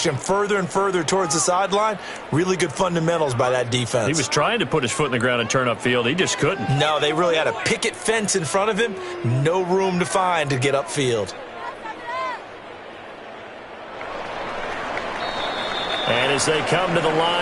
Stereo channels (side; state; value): both; identical; correlation 1.00